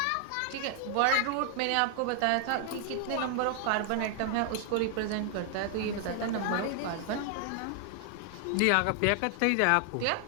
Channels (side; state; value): both; different; correlation 0.00